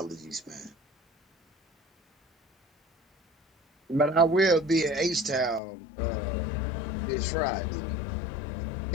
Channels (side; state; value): right; drops out; at 5.6 s